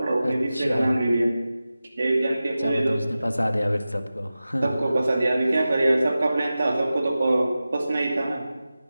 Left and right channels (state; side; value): inverted; both; correlation -0.95